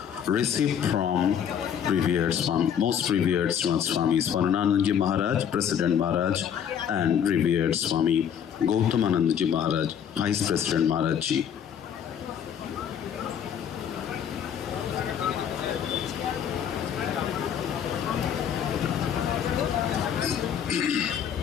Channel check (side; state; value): right; quieter; 8.5 dB